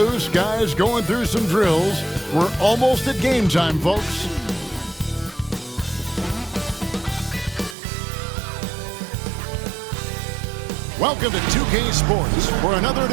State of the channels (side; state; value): left; drops out; at 7.8 s